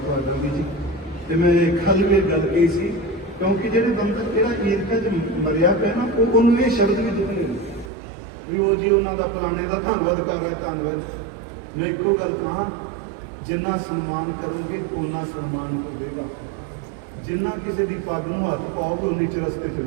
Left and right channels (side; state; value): left; drops out; at 7.9 s